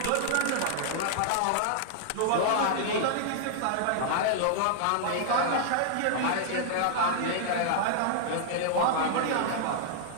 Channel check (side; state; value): both; different; correlation -0.01